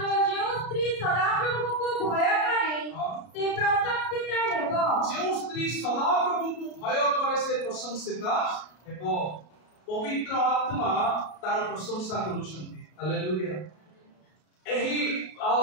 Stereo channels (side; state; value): right; late; 33 ms